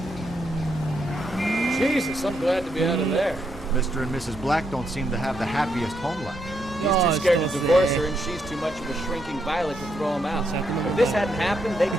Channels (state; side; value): normal; both; correlation 0.78